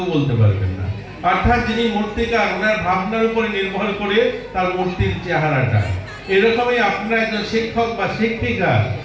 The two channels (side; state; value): both; identical; correlation 1.00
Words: বলতে পারবেন না অর্থাৎ যিনি মূর্তিকার ওনার ভাবনার উপরে নির্ভর করে তার মূর্তির চেহারাটা এরকমই আপনারা একজন শিক্ষক বা শিক্ষিকা